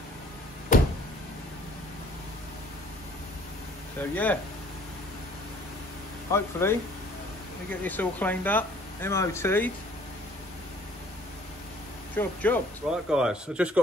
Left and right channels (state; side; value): normal; both; correlation 0.56